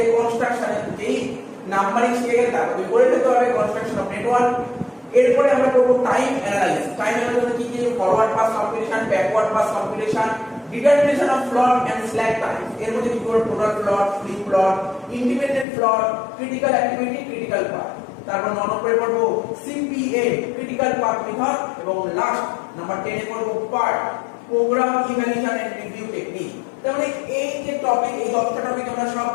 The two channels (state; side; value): drops out; right; at 15.7 s